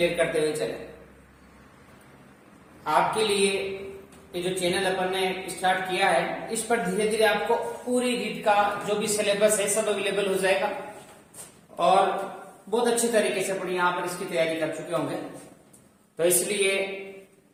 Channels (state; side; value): identical; both; correlation 1.00